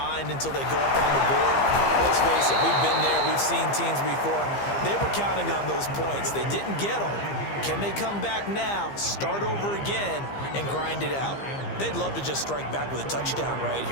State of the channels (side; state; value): right; late; 15 ms